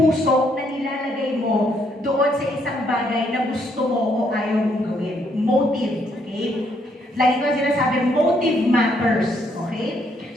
na nilalagay mo doon sa isang bagay na gusto mo o ayaw mong gawin. Motive. Okay? Lagi ko sinasabi, motive matters. Okay?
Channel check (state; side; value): normal; both; correlation 0.72